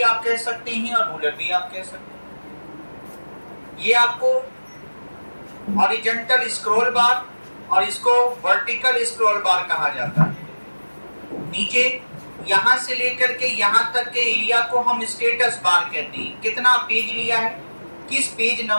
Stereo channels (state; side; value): inverted; both; correlation -1.00